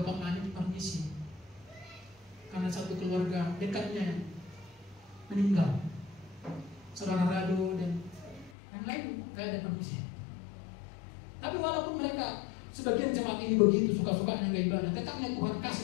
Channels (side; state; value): right; drops out; at 8.5 s